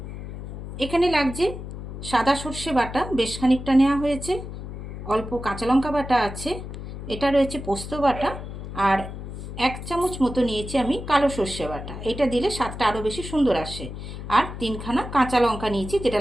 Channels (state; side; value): noise; left; hum, 9 dB below the sound